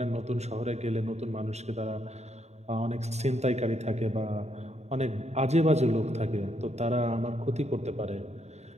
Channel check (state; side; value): late; left; 0.32 ms